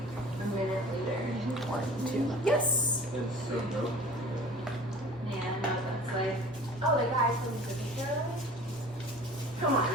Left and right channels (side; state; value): left; noise; rumble, 22 dB below the sound